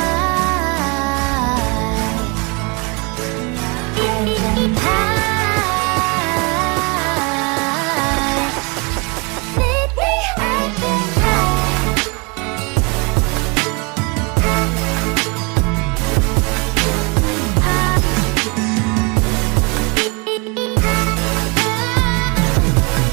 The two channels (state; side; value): quieter; left; 30.8 dB